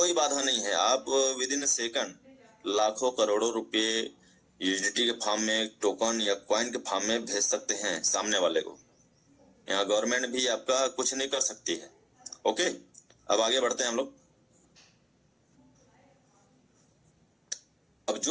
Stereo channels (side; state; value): both; identical; correlation 1.00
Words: बाधा नहीं है, आप विद इन सेकंड लाखों करोड़ों रुपए यूएसडीटी के फॉर्म में, टोकन या कॉइन के फॉर्म में भेज सकते हैं सामने वाले को। यहाँ गवर्नमेंट भी आपका कुछ नहीं कर सकती है। ओके, अब आगे बढ़ते हैं हम लोग। अब